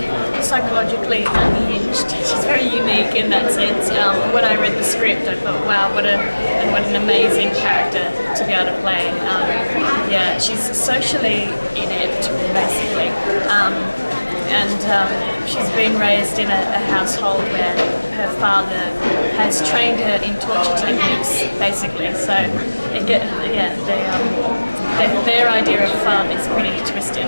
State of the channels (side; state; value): both; inverted; correlation -1.00